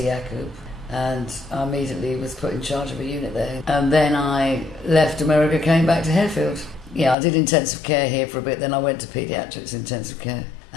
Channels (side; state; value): right; drops out; at 7.2 s